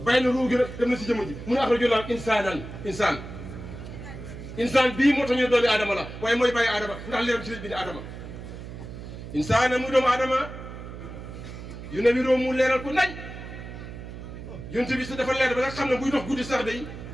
bàyyi na ruuxu gi nag dem na si jëmm ji mu ne axrajoo laa insaan bii moo tax ñu doomi Adama la waaye mooy bàyyi Adama ndax leeram ci lañ bind Adama insaan muy doomu Adama yu ne wiroo mu leeral ko nañ yunt bi si dafa leer ba nga xam ne buy dox guddi sax day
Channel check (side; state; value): right; noise; hum, 11 dB below the sound